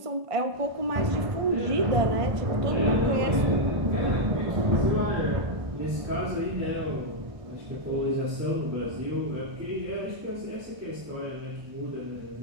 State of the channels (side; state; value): left; late; 1.5 ms